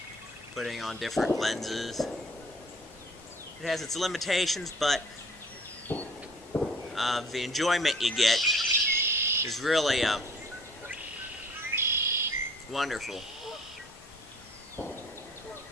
putting on different lenses. It has its limitations, but the enjoyment you get is really wonderful.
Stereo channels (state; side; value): normal; both; correlation 0.52